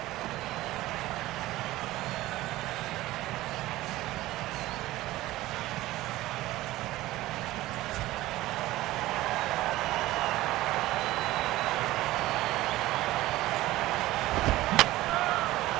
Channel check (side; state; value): left; quieter; 16.9 dB